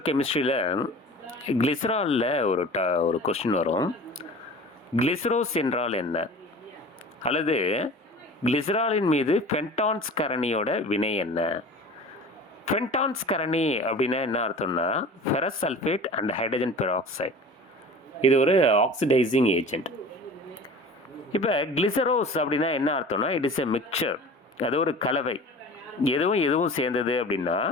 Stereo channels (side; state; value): both; normal; correlation 0.39